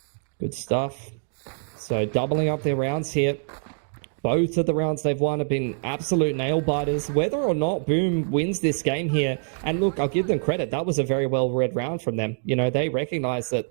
Good stuff. So doubling up their rounds here. Both of the rounds they've won have been absolute nail-biters. Whether or not Boom wins this game here, and look, I'll give them credit, that was a very well-read round from them. You know, they recognized that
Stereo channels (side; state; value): left; silent; digital silence